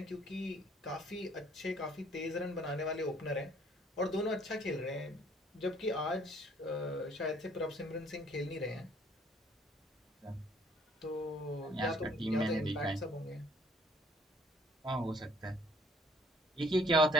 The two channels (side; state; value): both; normal; correlation 0.60